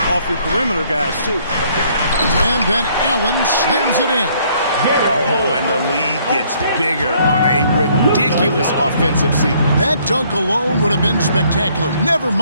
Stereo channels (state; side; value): inverted; both; correlation -0.64